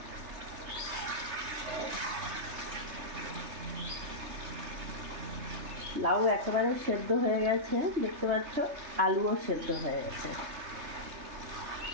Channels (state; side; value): late; left; 3.3 ms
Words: লাউ একেবারে সেদ্ধ হয়ে গেছে, দেখতে পাচ্ছ, আলুও সেদ্ধ হয়ে গেছে।